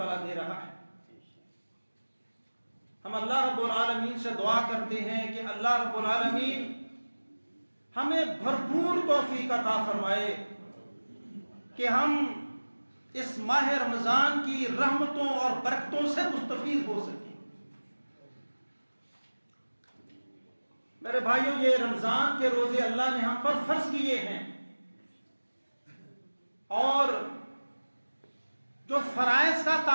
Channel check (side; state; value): both; inverted; correlation -1.00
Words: دے رہا ہے۔ ہم اللہ رب العالمین سے دعا کرتے ہیں کہ اللہ رب العالمین ہمیں بھرپور توفیق عطا فرمائے کہ ہم اس ماہ رمضان کی رحمتوں اور برکتوں سے مستفید ہو سکیں۔ میرے بھائیوں، یہ رمضان کے روزے اللہ نے ہم پر فرض کیے ہیں، اور جو فرائض کا